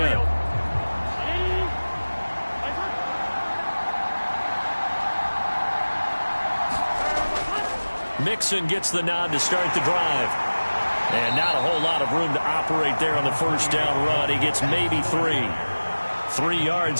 Mixon gets the nod to start the drive. And not a whole lot of room to operate there on the first down run. He gets maybe 3. 3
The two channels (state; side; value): inverted; both; correlation -1.00